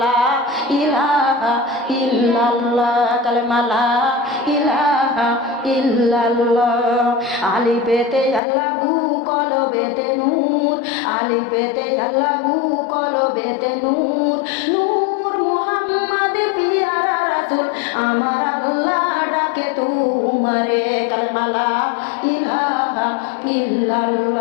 লা ইলাহা ইল্লাল্লাহ কালেমা লা ইলাহা ইল্লাল্লাহ। আলিফেতে আল্লাহু কলবেতে নূর, আলিফেতে আল্লাহু কলবেতে নূর নূর মোহাম্মদ পিয়ারা রাসূল আমার আল্লাহ ডাকে তোমারে কালেমা লা ইলাহা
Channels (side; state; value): right; drops out; at 8.4 s